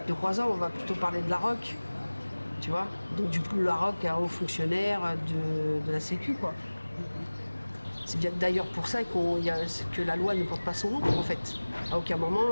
de Croizat, on va plutôt parler de Larocque, tu vois. Donc, du coup, Larocque est un haut fonctionnaire de la Sécu, quoi. C'est bien d'ailleurs pour ça que la loi ne porte pas son nom, en fait. À aucun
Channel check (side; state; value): both; inverted; correlation -1.00